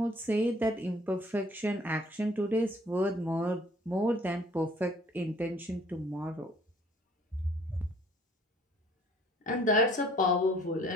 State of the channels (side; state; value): both; normal; correlation 0.57